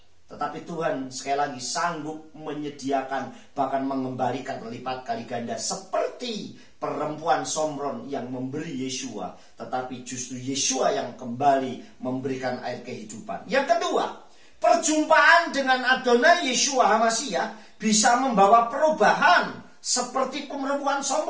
Tetapi Tuhan sekali lagi sanggup menyediakan, bahkan mengembalikan lipat kali ganda. Seperti perempuan Somron yang memberi Yeshua, tetapi justru Yeshua yang kembali memberikan air kehidupan. Yang kedua, perjumpaan dengan Adonai Yeshua HaMasyiah bisa membawa perubahan seperti perempuan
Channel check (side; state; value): both; identical; correlation 1.00